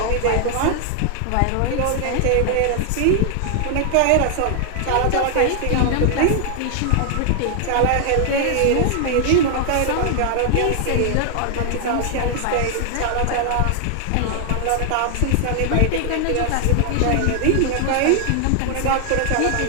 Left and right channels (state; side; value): different; both; correlation 0.00